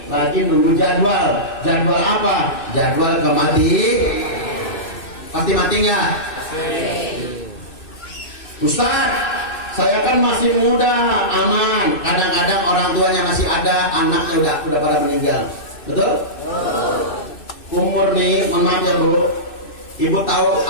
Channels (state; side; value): late; right; 2.6 ms